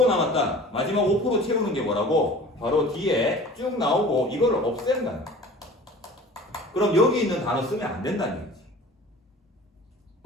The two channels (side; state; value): both; normal; correlation 0.43